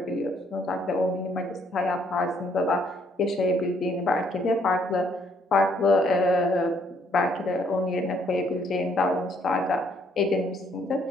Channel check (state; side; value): normal; both; correlation 0.67